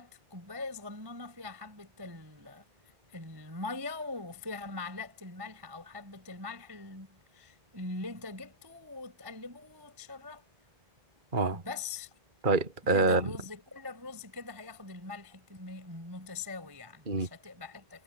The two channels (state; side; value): late; left; 1.2 ms